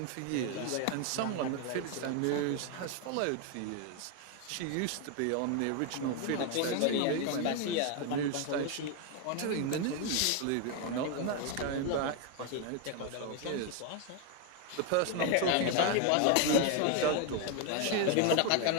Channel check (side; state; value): both; different; correlation 0.01